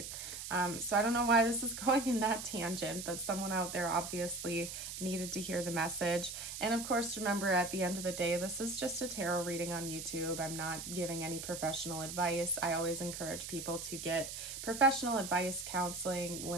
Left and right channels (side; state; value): right; noise; hiss, 7 dB below the sound